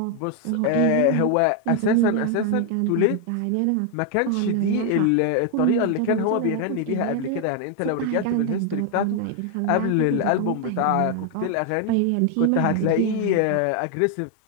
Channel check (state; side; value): different; both; correlation 0.01